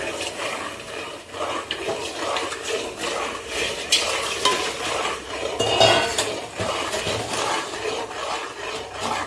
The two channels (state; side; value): identical; both; correlation 1.00